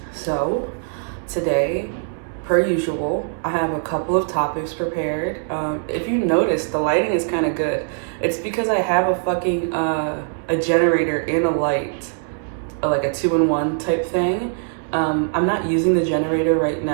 So today, per usual, I have a couple of topics prepared. If you notice, the lighting is kind of good. It's because I have a fucking a generator and a light, like a 2-in-1 type thing. I'm not using the generator right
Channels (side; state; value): left; silent; 65 dB below the other